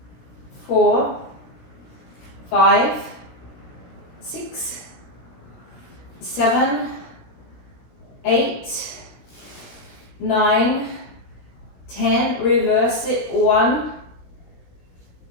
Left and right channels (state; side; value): late; right; 17 ms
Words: 4, 5, 6, 7, 8, 9, 10. Reverse it. 1,